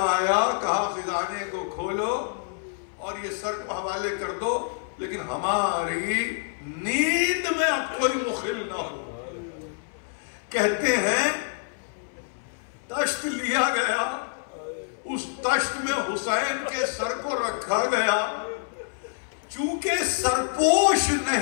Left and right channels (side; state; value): right; silent; 60 dB below the other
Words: آیا. کہا خزانے کو کھولو اور یہ سر کو حوالے کر دو، لیکن ہماری نیند میں اب کوئی مخل نہ ہو. کہتے ہیں تشت لیا گیا، اس تشت میں حسین کے سر کو رکھا گیا. چونکہ سرپوش